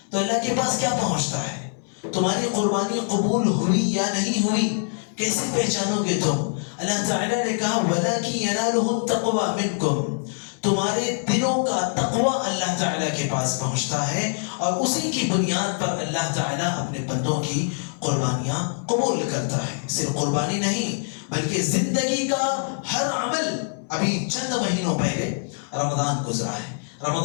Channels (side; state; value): right; silent; digital silence